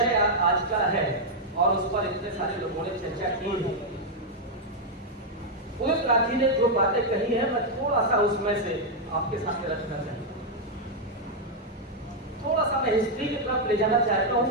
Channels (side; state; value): both; normal; correlation -0.02